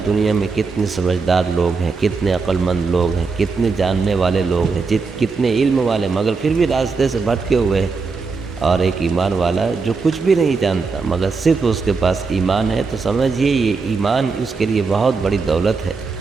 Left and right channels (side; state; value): left; quieter; 4.6 dB